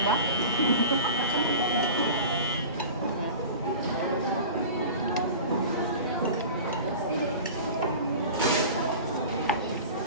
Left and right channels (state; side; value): inverted; both; correlation -0.36